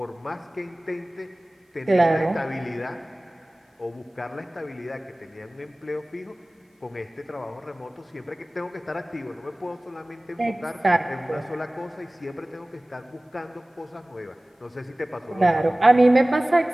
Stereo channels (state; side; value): normal; both; correlation 0.98